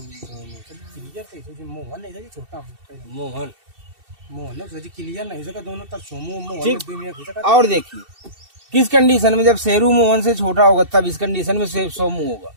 मोहन नहीं था छोटा मोहन मोहन है क्लियर नहीं हो सका दोनों तरफ सोमो मोहन ठीक। दुनिया हो सका। और देखिए किस कंडीशन में, जब शेरू मोहन से छोटा होगा तब इस कंडीशन में सोमू होगा।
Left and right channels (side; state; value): left; late; 2.7 ms